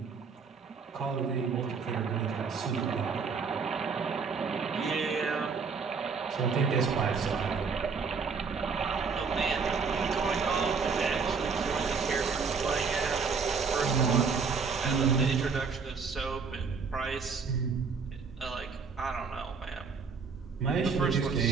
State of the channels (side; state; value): left; quieter; 5.3 dB